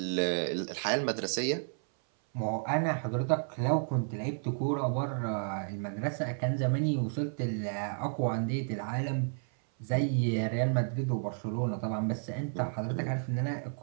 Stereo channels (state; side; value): silent; left; 57 dB below the other